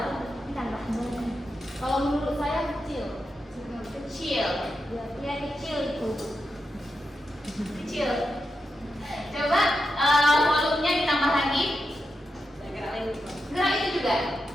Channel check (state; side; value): normal; both; correlation 0.87